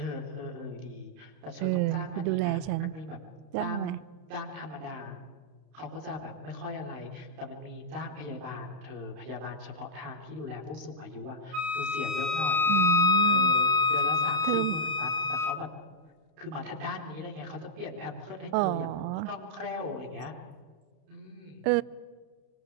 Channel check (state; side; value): late; left; 31 ms